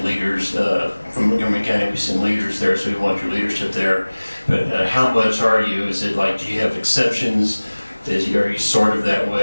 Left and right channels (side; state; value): both; inverted; correlation -1.00